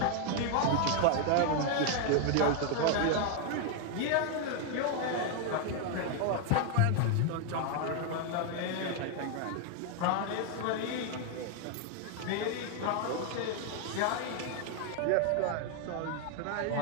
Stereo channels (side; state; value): both; different; correlation 0.01